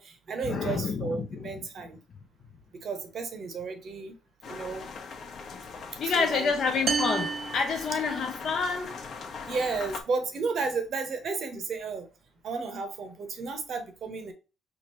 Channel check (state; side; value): normal; both; correlation 0.68